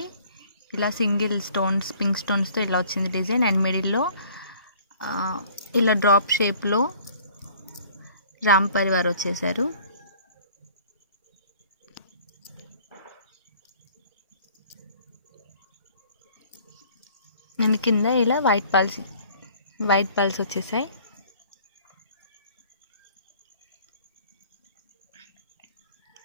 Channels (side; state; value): both; inverted; correlation -0.54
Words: ఇలా సింగిల్ స్టోన్స్, పింక్ స్టోన్స్తో ఇలా వచ్చింది డిజైన్. అండ్ మిడిల్లో ఇలా డ్రాప్ షేప్లో రామ్ పరివార్ వచ్చేసారు. నేను కింద ఇలా వైట్ పల్స్ వచ్చేసాయి.